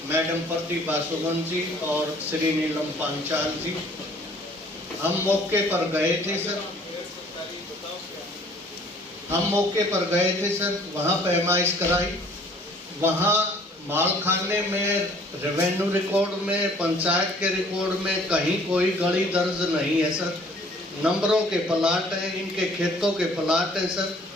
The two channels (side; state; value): both; normal; correlation 0.55